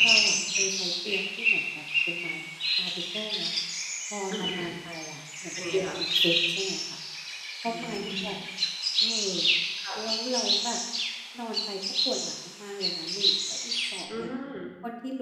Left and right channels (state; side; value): identical; both; correlation 1.00